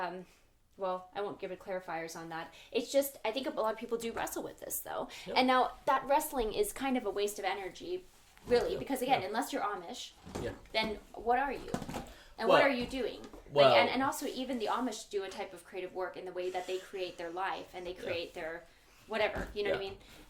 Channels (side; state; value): both; identical; correlation 1.00